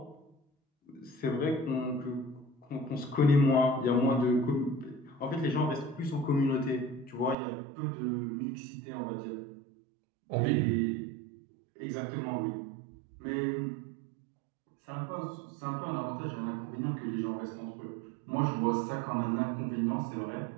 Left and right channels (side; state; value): left; drops out; at 7.4 s